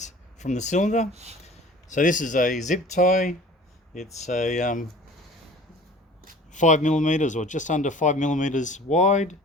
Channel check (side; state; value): both; normal; correlation 0.45